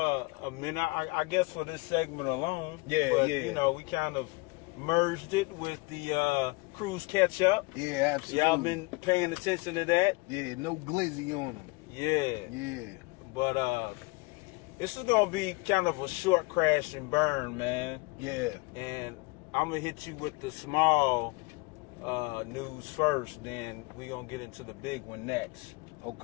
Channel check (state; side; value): quieter; right; 26.2 dB